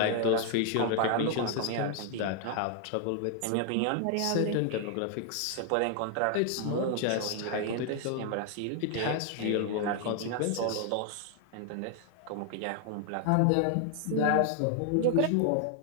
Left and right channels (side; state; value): both; different; correlation 0.00